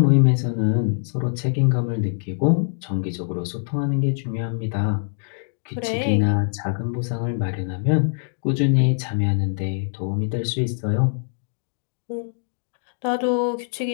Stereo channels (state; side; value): silent; right; digital silence